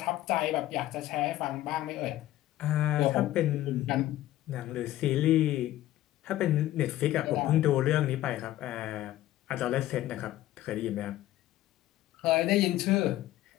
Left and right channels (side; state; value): right; quieter; 14.7 dB